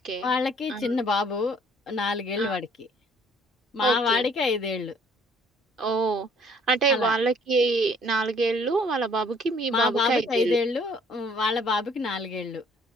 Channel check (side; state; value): both; normal; correlation 0.59